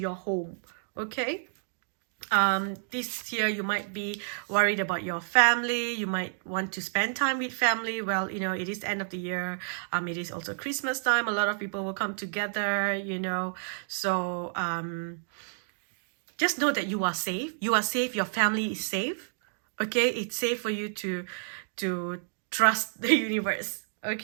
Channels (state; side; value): silent; left; digital silence